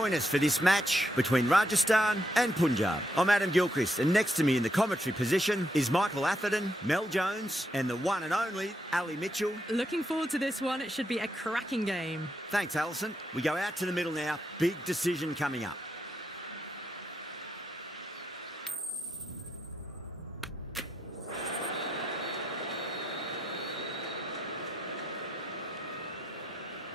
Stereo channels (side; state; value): both; normal; correlation 0.80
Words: us for this match between Rajasthan and Punjab. I'm Adam Gilchrist, and next to me in the commentary position is Michael Atherton, Mel Jones, and the one and only Ali Mitchell. Looking forward to this one. It should be a cracking game. Thanks, Alison. We go out to the middle now. Big decision coming up.